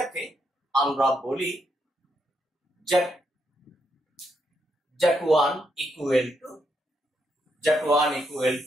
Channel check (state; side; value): normal; both; correlation 0.79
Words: আমরা বলি z1 equal